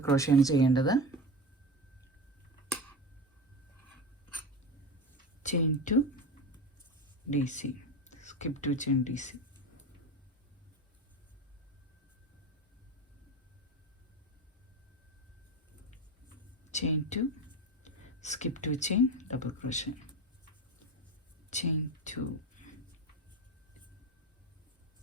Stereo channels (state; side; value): normal; both; correlation 0.24